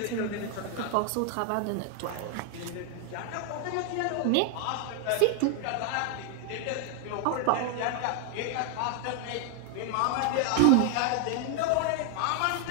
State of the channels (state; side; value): different; both; correlation 0.00